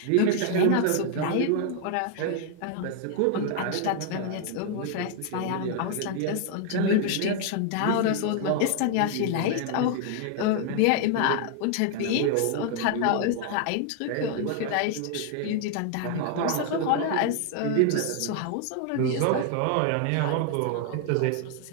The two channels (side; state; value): both; different; correlation 0.00